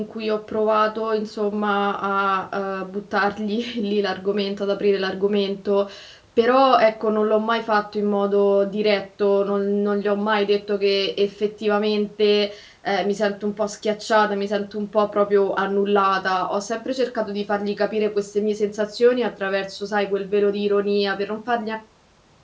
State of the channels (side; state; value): both; identical; correlation 1.00